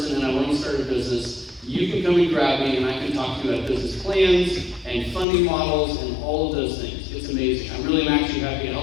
and I want to start a business, you can come and grab me and I can talk to you about business plans and funding models and all of those things. It's amazing. I'm actually happy to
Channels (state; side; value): drops out; right; at 5.2 s